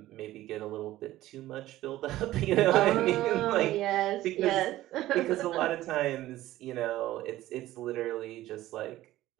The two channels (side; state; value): left; quieter; 15.4 dB